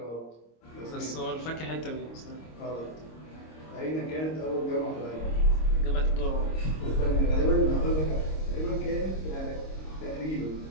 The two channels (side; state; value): right; late; 26 ms